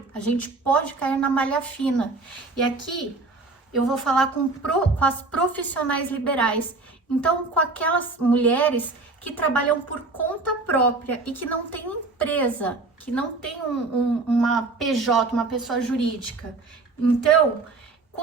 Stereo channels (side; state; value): left; quieter; 3.5 dB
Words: pode cair na malha fina. E aqui eu vou falar com as profissionais liberais. Então, com aquelas mulheres que trabalham por conta própria e que não tem empresa, que não tem uma PJ, uma pessoa jurídica. Então,